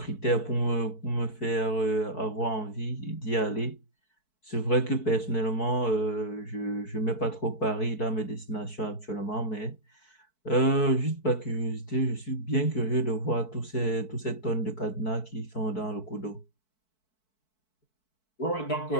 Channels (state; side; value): late; right; 4.6 ms